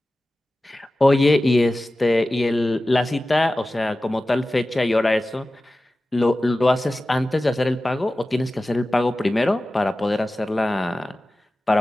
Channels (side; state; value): both; normal; correlation 0.95